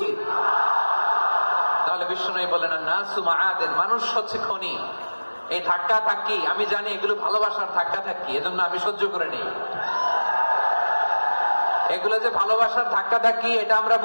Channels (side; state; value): both; inverted; correlation -1.00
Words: তাহলে বিশ্বনবী বলেন, নাসু মাআদিন, মানুষ হচ্ছে খনি। এই ধাক্কা ধাক্কি আমি জানি এগুলো ভালোবাসার ধাক্কা ধাক্কি, এজন্য আমি সহ্য করে নেই। এগুলো যে ভালোবাসার ধাক্কা ধাক্কি এটা আমরা